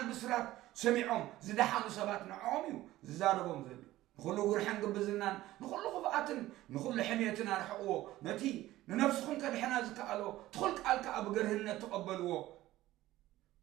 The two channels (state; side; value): quieter; left; 15.9 dB